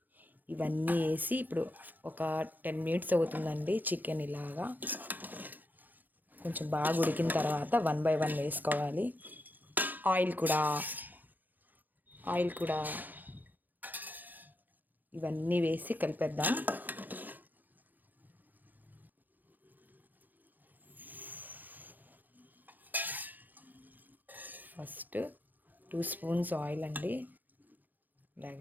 ఇవన్నీ వేసి ఇప్పుడు ఒక 10 మినిట్స్ అవుతుందండి. చికెన్ ఇలాగా కొంచెం బాగా ఉడికిన తర్వాత 1 బై 1 వేసుకోవాలి. ఆయిల్ కూడా ఇవన్నీ వేసి కలిపేద్దాం. ఫస్ట్ 2 స్పూన్స్ ఆయిల్ అండి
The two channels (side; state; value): left; late; 0.085 ms